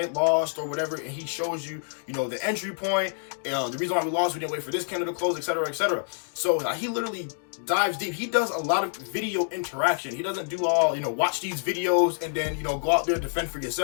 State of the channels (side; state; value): right; silent; digital silence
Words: lost, or whatever. And he shows you, the entry point, the reason why we lost, we didn't wait for this candle to close, etc., etc. So he literally dives deep. He does a lot of video interaction. He doesn't do all, watch these videos and then, go out there and defend for